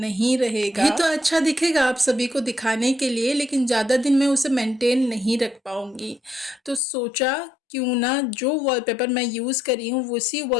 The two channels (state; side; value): drops out; right; at 6.8 s